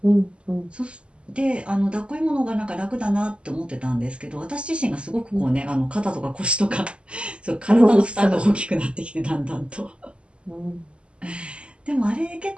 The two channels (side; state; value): left; late; 0.054 ms